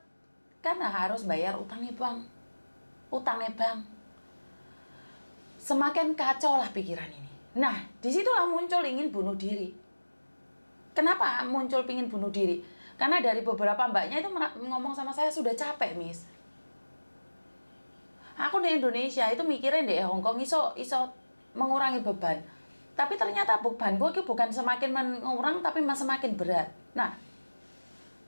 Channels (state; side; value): inverted; both; correlation -1.00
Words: karena harus bayar utangnya bank. Semakin kacau lah pikiran ini. Nah, disitulah muncul ingin bunuh diri. Kenapa muncul ingin bunuh diri? Karena dari beberapa mbaknya itu ngomong sama saya, sudah capek, Miss. Aku di Indonesia itu mikirin di Hong Kong iso mengurangi beban. Tapi ternyata bebanku itu bukan semakin mengurang, tapi semakin berat. Nah,